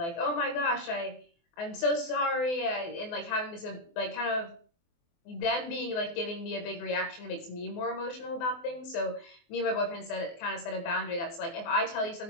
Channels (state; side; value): late; right; 24 ms